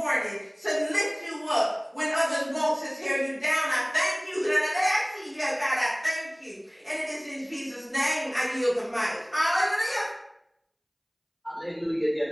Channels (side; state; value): both; identical; correlation 1.00